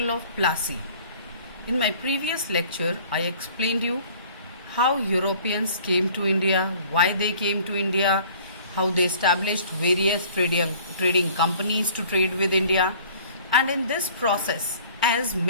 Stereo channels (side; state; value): both; inverted; correlation -0.51